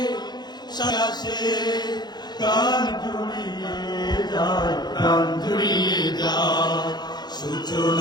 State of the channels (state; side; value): late; right; 0.20 ms